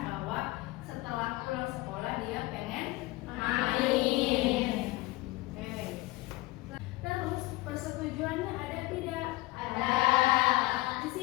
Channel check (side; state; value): right; quieter; 20.0 dB